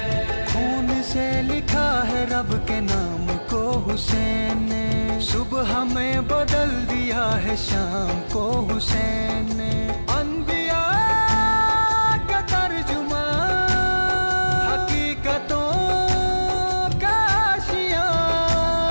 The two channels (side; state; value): both; inverted; correlation -1.00